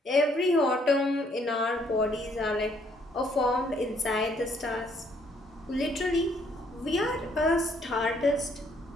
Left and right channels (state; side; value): normal; both; correlation 0.67